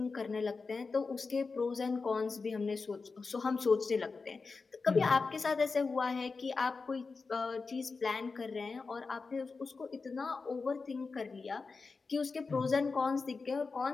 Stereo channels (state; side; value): quieter; right; 4.4 dB